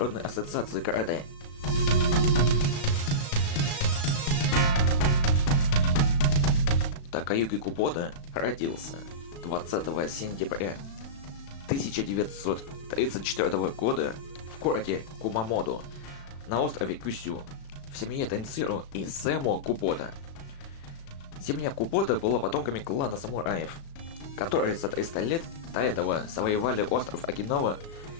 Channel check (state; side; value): late; right; 36 ms